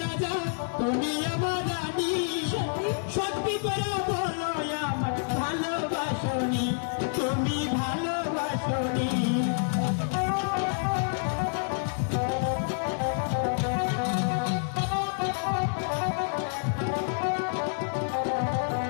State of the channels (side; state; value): right; silent; 59 dB below the other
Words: রাজা তুমি আমার রানী সত্যি করে বলো আমার ভালোবাসনি তুমি ভালোবাসনি